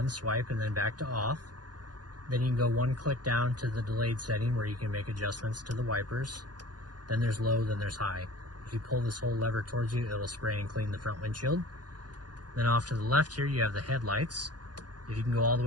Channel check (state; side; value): late; left; 0.70 ms